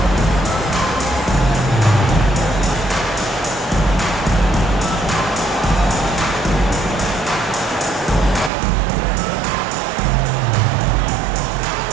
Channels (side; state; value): left; drops out; at 8.5 s